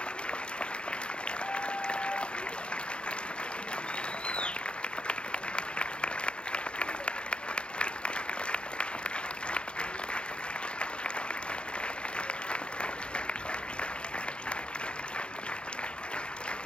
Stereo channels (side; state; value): right; late; 0.053 ms